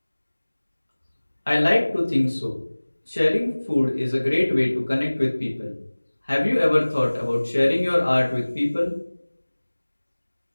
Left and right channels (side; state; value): both; inverted; correlation -1.00